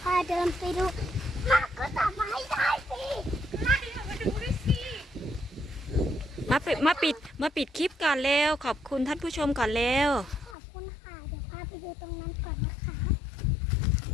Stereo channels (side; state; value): right; drops out; at 10.6 s